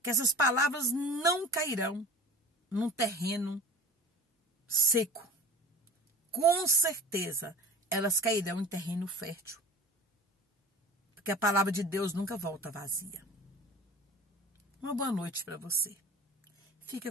que essas palavras não cairão num terreno seco. Com certeza, elas cairão em terreno fértil. Porque a palavra de Deus nunca volta vazia. Uma boa noite para você.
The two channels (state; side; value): normal; both; correlation 0.39